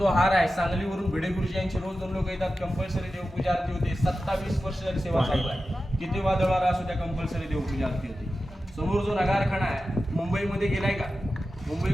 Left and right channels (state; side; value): normal; both; correlation 0.93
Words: हार आहे सांगलीवरून भिडे गुरुजी यांची रोज 2 लोक येतात. कंपल्सरी देवपूजा आरती होते. 27 वर्ष झाली सेवा चालू आहे. किती वादळ वारा असू त्या कंपल्सरी देवपूजा आरती होते. समोर जो नगारखाना आहे मुंबईमध्ये गेलाय का?